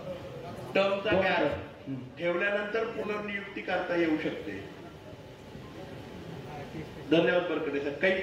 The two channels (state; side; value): identical; both; correlation 1.00